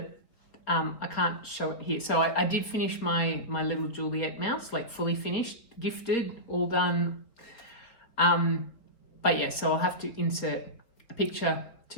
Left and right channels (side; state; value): right; late; 3.8 ms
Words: I can't show it here. So I did finish my little Juliet mouse, like fully finished, gifted, all done. But yeah, so I'll have to insert a picture